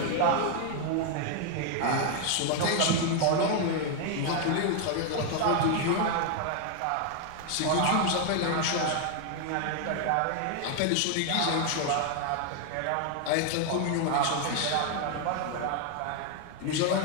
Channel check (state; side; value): different; both; correlation 0.00